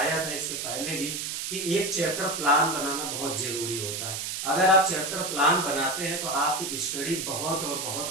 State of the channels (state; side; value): noise; right; hiss, 4 dB below the sound